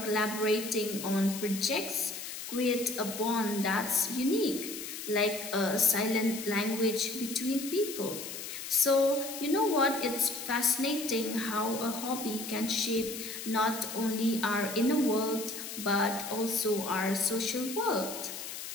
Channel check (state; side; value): noise; left; hiss, 8 dB below the sound